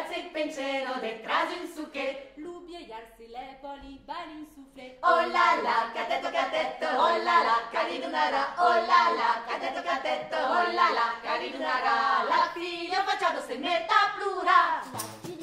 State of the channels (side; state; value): both; identical; correlation 1.00